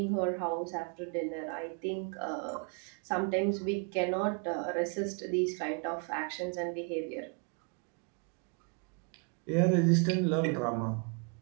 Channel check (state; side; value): quieter; left; 37.1 dB